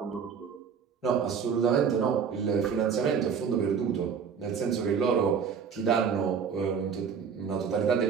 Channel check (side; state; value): left; quieter; 6.7 dB